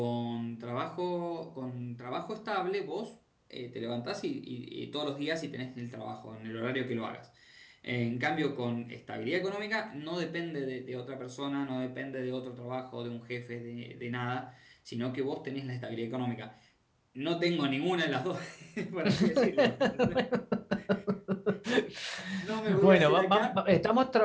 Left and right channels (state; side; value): identical; both; correlation 1.00